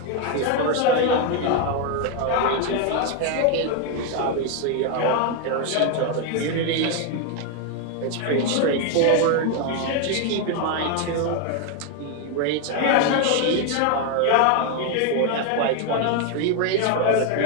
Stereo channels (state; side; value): different; both; correlation 0.01